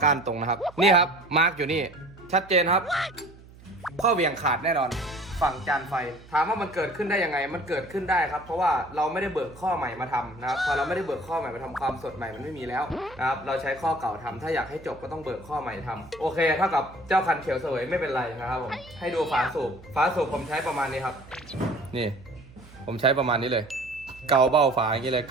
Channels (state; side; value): noise; right; hum, 21 dB below the sound